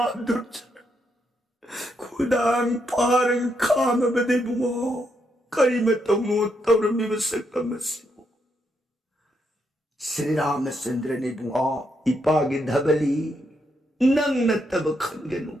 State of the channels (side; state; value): both; normal; correlation 0.79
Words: दुर्ज खुदांग पारंग खाम बदे बुओ कई मतमो तवरमी बसकम सिबो श्री रामचंद्र ने बुआ इपागे धबली नंग न तब खनगनु